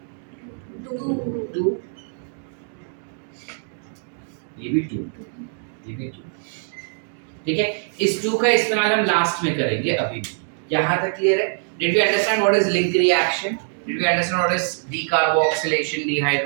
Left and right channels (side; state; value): left; silent; 63 dB below the other